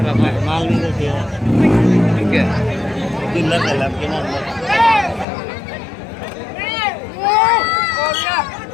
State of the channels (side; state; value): right; drops out; at 5.2 s